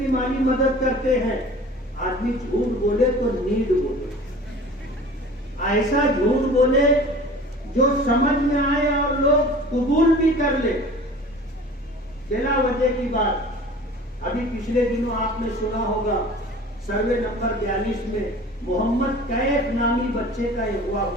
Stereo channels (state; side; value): normal; both; correlation 0.43